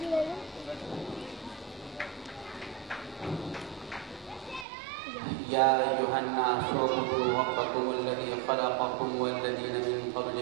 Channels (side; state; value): left; drops out; at 4.7 s